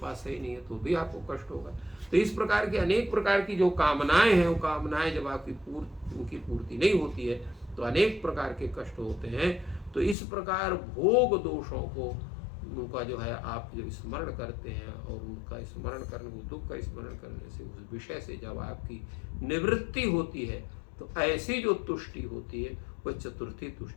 सही नहीं है, तो भी आपको कष्ट होगा। तो इस प्रकार की अनेक प्रकार की जो कामनाएं हैं, वो कामनाएं जब आपकी उनकी पूर्ति नहीं होती है, तो अनेक प्रकार के कष्ट होते हैं। तो इस प्रकार भोग दोषों को, उनका जो है आप जब स्मरण करते हैं, और उनका स्मरण करने, दुख का स्मरण करने से, उस विषय से जब आपकी निवृत्ति होती है, तो ऐसी जो तुष्टि होती है, वह चतुर्थी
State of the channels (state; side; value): drops out; right; at 10.2 s